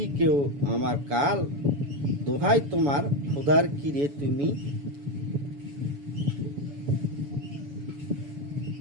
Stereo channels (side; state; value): left; late; 7.0 ms